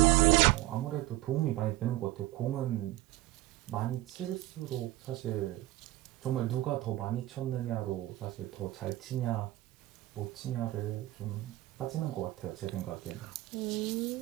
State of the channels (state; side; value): quieter; left; 17.5 dB